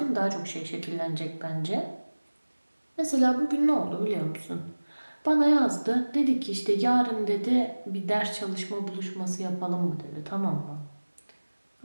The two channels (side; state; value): both; inverted; correlation -1.00